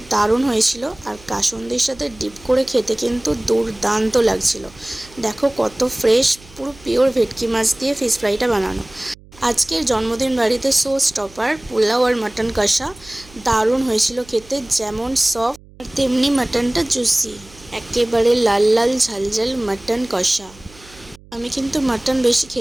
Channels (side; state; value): right; noise; hum, 24 dB below the sound